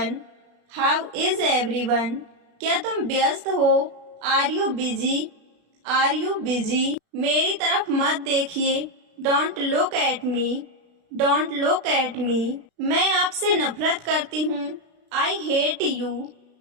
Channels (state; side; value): late; left; 36 ms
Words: How is everyone? क्या तुम व्यस्त हो? Are you busy? Are you busy? मेरी तरफ मत देखिए। Don't look at me. Don't look at me. मैं आपसे नफरत करती हूँ। I hate you.